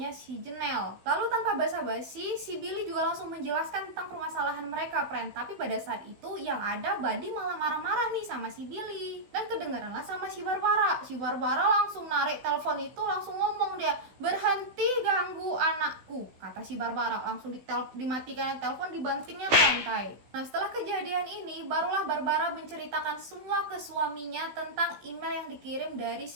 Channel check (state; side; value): late; left; 16 ms